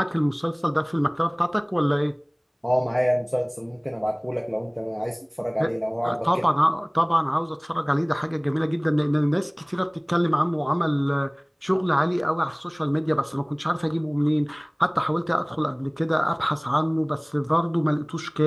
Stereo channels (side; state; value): both; identical; correlation 1.00